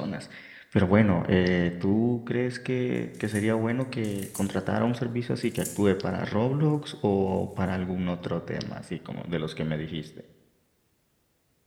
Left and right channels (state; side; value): identical; both; correlation 1.00